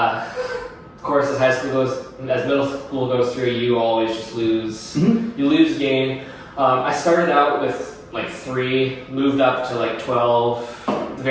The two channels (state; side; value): identical; both; correlation 1.00